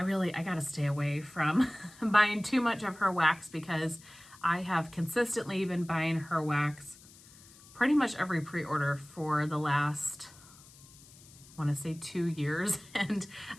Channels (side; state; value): left; noise; hiss, 23 dB below the sound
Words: gotta stay away from buying too much of her wax because I have consistently been buying her wax pretty much every pre-order for the last, I want to say 2 years. And